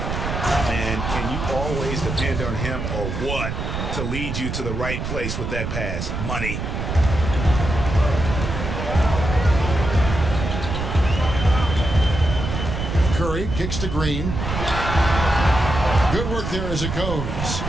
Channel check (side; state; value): right; noise; rumble, 4 dB below the sound